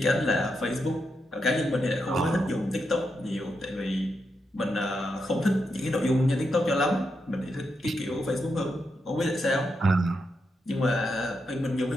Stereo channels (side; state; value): both; normal; correlation 0.84